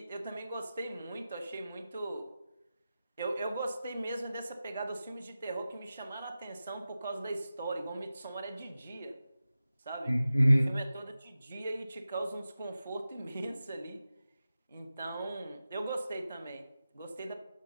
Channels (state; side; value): inverted; both; correlation -0.94